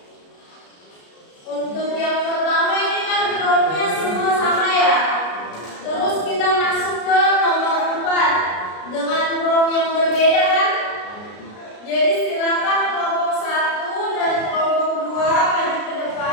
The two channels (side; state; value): right; late; 33 ms